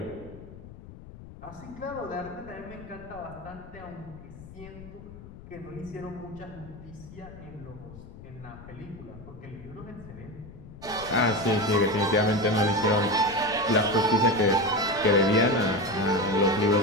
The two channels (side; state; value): left; noise; rumble, 16 dB below the sound